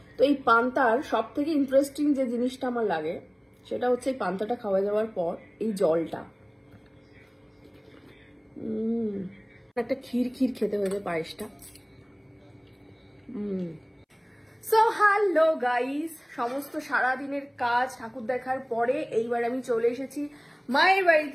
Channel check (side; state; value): both; identical; correlation 1.00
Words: তো এই পান্তার সব থেকে ইন্টারেস্টিং যে জিনিসটা আমার লাগে সেটা হচ্ছে এই পান্তাটা খাওয়া যাওয়ার পর এই জলটা। একটা ক্ষীর ক্ষীর খেতে হয়েছে পায়েসটা। সো হ্যালো গাইস, সমস্ত সারাদিনের কাজ ঠাকুর দেখার পরে এইবার আমি চলে এসেছি মায়ের